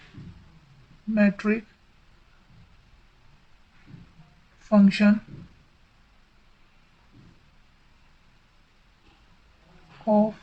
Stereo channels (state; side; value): identical; both; correlation 1.00